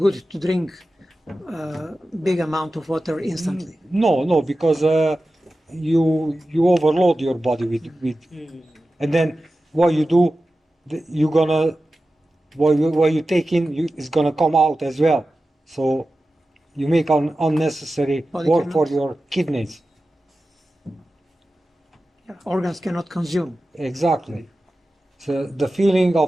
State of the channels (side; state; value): both; normal; correlation 0.94